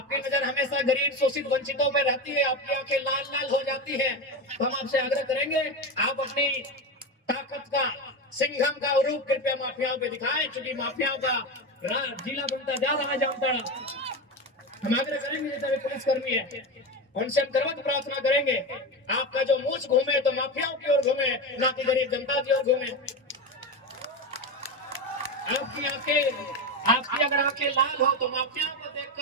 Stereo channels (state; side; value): normal; both; correlation 0.18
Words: नजर हमेशा गरीब, शोषित, वंचितों पर रहती है, आपकी आंखें लाल लाल हो जाती है। तो हम आपसे आग्रह करेंगे, आप अपनी ताकत का, सिंघम का रूप कृपया माफियाओं पे दिखाएं, क्योंकि माफियाओं का जिला बनता जा रहा है जामताड़ा। हम आग्रह करेंगे जैसे पुलिसकर्मी है, उनसे हम करवत प्रार्थना करेंगे, आपका जो मूछ घूमे तो माफियाओं की ओर घूमे, ना कि गरीब जनता की ओर घूमे। आपकी अगर आंखें लाल हो तो माफियाओं को